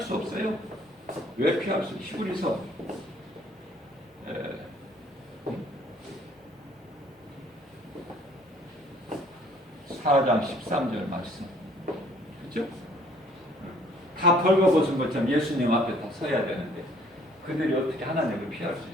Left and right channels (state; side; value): normal; both; correlation 0.59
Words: 수 없어요. 왜 피할 수? 히브리서 4장 13절 말씀. 그렇죠? 다 벌거벗은 것처럼 예수님 앞에 다 서야 되는데 그들이 어떻게 하나님을 피할 수